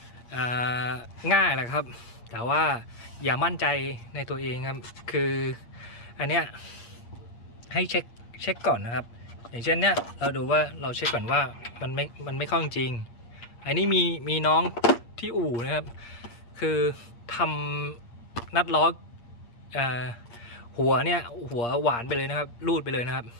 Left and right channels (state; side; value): late; right; 8.5 ms